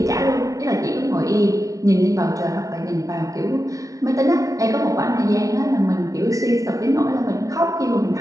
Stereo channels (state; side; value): late; left; 0.17 ms